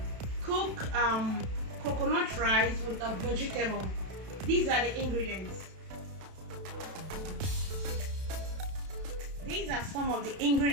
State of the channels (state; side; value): late; left; 32 ms